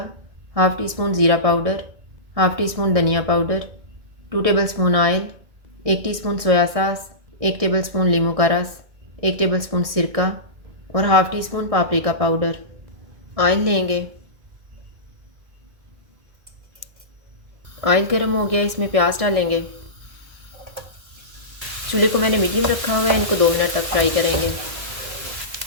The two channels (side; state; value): left; late; 1.6 ms